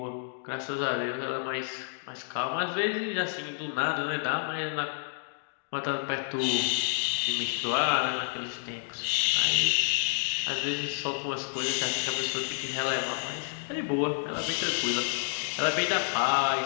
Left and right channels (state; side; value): silent; right; digital silence